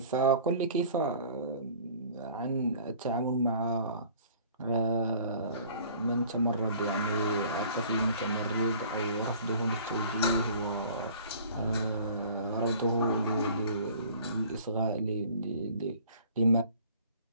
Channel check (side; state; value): both; inverted; correlation -0.50